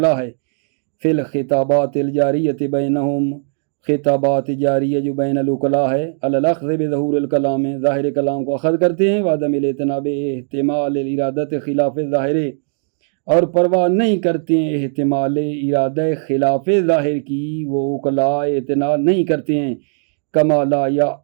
ہے. فی الخطابات الجاریۃ بینہم، خطابات جاریہ جو بین العقلاء ہے. علی الاخذ بظہور الکلام، ظاہر کلام کو اخذ کرتے ہیں. وعدم الاعتناب احتمال الارادۃ خلاف ظاہر، اور پرواہ نہیں کرتے ہیں احتمال ارادہ خلاف ظاہر کی. وہ عقلاء اعتنا نہیں کرتے ہیں. کما لا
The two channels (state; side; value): silent; left; digital silence